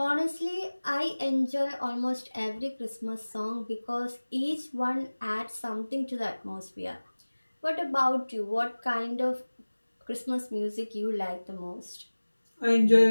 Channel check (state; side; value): inverted; both; correlation -1.00